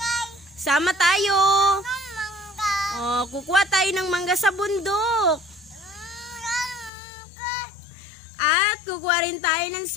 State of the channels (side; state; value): right; drops out; at 6.9 s